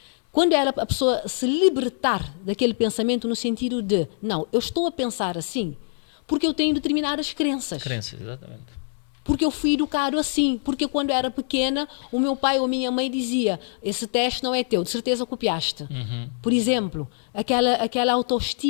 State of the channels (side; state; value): right; silent; digital silence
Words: Quando a pessoa se libertar daquele pensamento no sentido de, não, eu estou a pensar assim porque eu tenho determinadas crenças. Crenças, exatamente. Porque eu fui educado assim. Porque quando eu era pequena, o meu pai ou a minha mãe dizia, esse teste não é teu, de certeza copiaste. Por exemplo, aquela